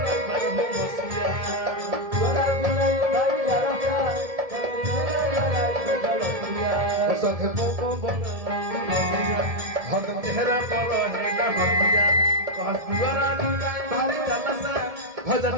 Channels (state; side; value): late; left; 1.7 ms